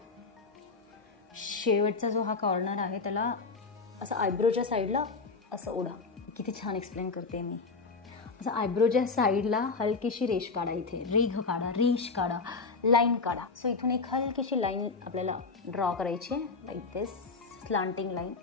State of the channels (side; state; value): right; quieter; 4.4 dB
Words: शेवटचा जो हा कॉर्नर आहे त्याला असं आयब्रोच्या साईडला असं ओढा. किती छान एक्सप्लेन करते मी. असं आयब्रोच्या साईडला हलकीशी रेष काढा, इथे रेघ काढा, रेष काढा, लाईन काढा. सो इथून एक हलकीशी लाईन आपल्याला ड्रॉ करायची आहे, लाईक दिस, स्लांटिंग लाईन